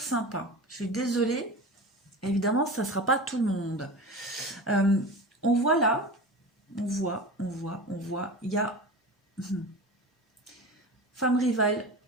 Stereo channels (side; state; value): both; normal; correlation 0.31